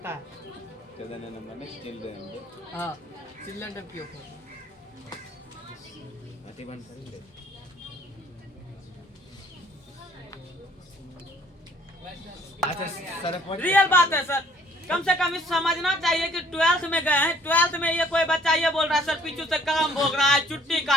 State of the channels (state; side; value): normal; both; correlation 0.59